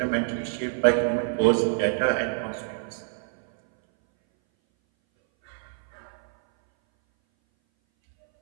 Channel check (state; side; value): silent; left; 59 dB below the other